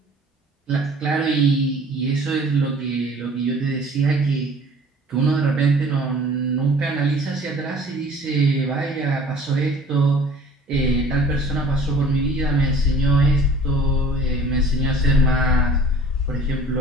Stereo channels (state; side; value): normal; both; correlation 0.49